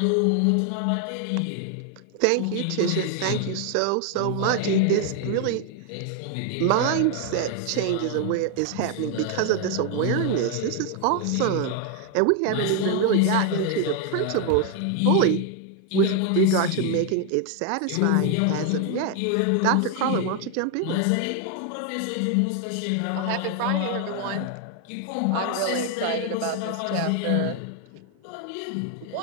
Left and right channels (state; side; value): different; both; correlation 0.01